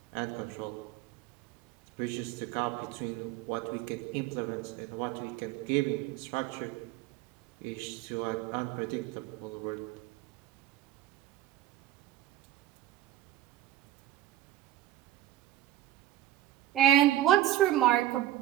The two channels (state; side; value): quieter; left; 13.8 dB